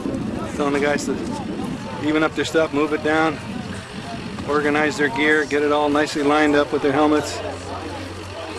Telling the guys to even up their stuff, move it down, organize their gear, get it all nicely lined up with their helmets.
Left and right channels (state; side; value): identical; both; correlation 1.00